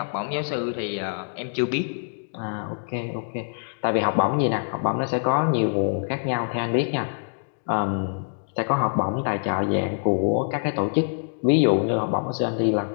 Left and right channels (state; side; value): silent; right; digital silence